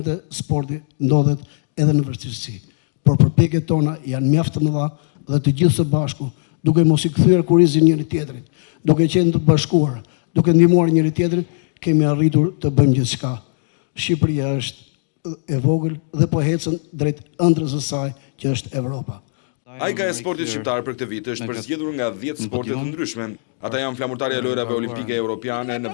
sporti ndodhet edhe në vështirësi. Por përpjekjet tona janë mjaft të mëdha dhe të gjithë së bashku, duke mos i kthyer kurrizin njëri tjetrit, duke qenë të bashkuar, duke ndihmuar njëri tjetrin, kemi arritur të bëjmë gjithçka. Shqipëria është e vogël dhe po ecën drejt ëndrrës së saj që është Evropa. Ajka e sportit shqiptar për këtë vit është përzgjedhur nga 10 sporte të ndryshme. Ata janë flamurtarja e lojrave olimpike europiane në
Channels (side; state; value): right; silent; digital silence